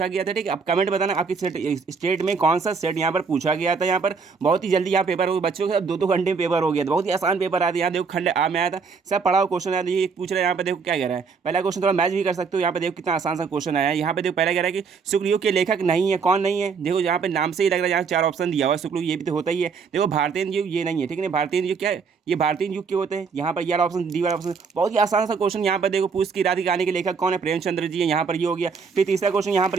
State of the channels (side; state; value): left; quieter; 5.4 dB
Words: गया था। ठीक है, अब कमेंट बताना आपकी स्टेट में कौन सा सेट यहाँ पर पूछा गया था। यहाँ पर बहुत ही जल्दी यहाँ पेपर हो बच्चों के 2-2 घंटे में पेपर हो गया था। बहुत ही आसान पेपर आया था। यहाँ देखो खंड आ में आया था, सब पढ़ा हुआ क्वेश्चन आया था। ये पूछ रहा है यहाँ पे देखो क्या कह रहा है। पहला क्वेश्चन थोड़ा मैच भी कर सकते हो। यहाँ पे देखो कितना आसान सा क्वेश्चन आया है। यहाँ पे देखो पहला कह रहा है कि शुक्लयुग के लेखक नहीं है। कौन नहीं है? देखो यहाँ पे नाम से ही लग रहा है। यहाँ 4 ऑप्शन दिया हुआ है। शुक्लयुग ये भी तो होता ही है। देखो भारतीय युग ये नहीं है। ठीक है, भारतीय युग क्या है? ये भारतीय युग के होते हैं। यहाँ पर ये ऑप्शन डी वाला ऑप्शन बहुत ही आसान सा क्वेश्चन। यहाँ पर देखो पूछ की रात की कहानी के लेखक कौन है? प्रेमचंद्र जी है। यहाँ पर ये हो गया। फिर तीसरा क्वेश्चन यहाँ